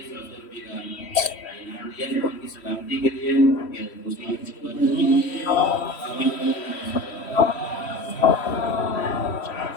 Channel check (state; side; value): late; right; 3.1 ms